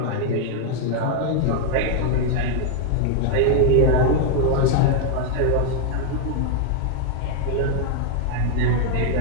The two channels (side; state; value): both; different; correlation 0.00